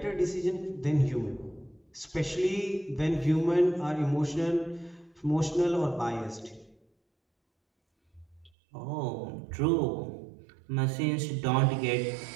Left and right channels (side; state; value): left; drops out; at 8.5 s